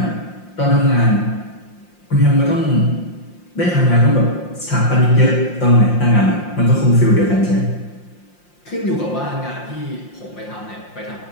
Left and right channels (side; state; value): right; late; 5.7 ms